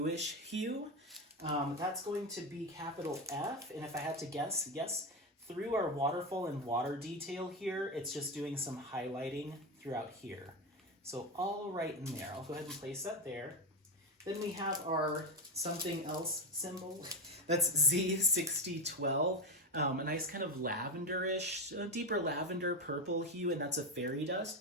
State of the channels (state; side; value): normal; both; correlation 0.13